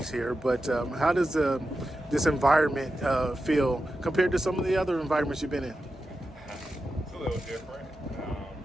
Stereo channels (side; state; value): both; normal; correlation 0.91